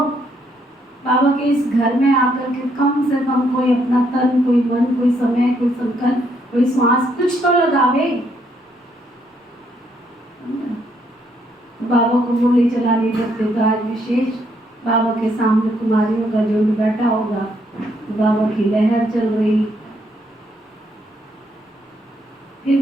बाबा के इस घर में आकर के कम से कम कोई अपना तन, कोई मन, कोई समय, कोई संकल्प, कोई श्वास कुछ तो लगावे। बाबा को गोली चलानी करते तो आज विशेष बाबा के सामने कुमारियों का झुंड बैठा होगा, तो बाबा की लहर चल रही। फिर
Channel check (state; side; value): normal; both; correlation 0.73